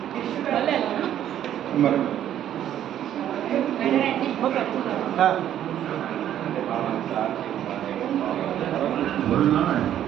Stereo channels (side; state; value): left; quieter; 11.0 dB